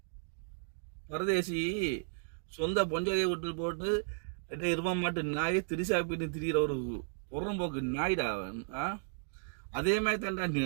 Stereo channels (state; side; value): silent; left; digital silence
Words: பரதேசி சொந்த பொஞ்சாதியை விட்டு போட்டு இருவ மாட்டு நாயை திரிசா பின்னு திரிகிற ஒரு புறம்போக்கு நாய்டா அவன். அதே மாதிரி